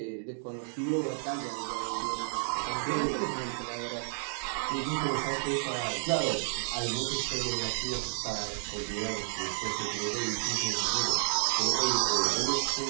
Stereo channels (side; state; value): left; silent; digital silence